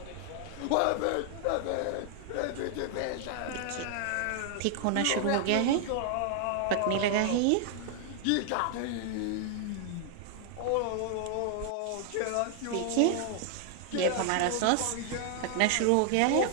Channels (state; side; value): different; both; correlation 0.00